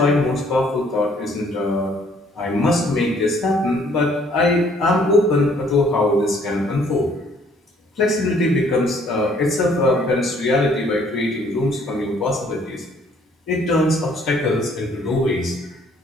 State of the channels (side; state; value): both; normal; correlation 0.62